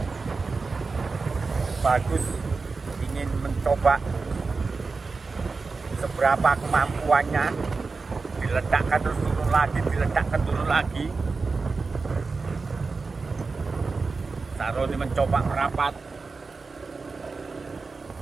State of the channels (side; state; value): left; quieter; 4.3 dB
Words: Bagus. Ingin mencoba seberapa kemampuannya. Diledakkan terus turun lagi, diledakkan turun lagi. Saroni mencoba merapat.